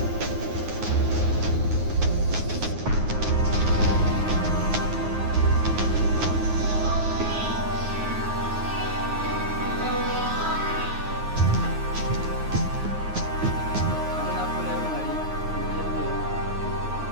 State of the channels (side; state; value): left; late; 9.5 ms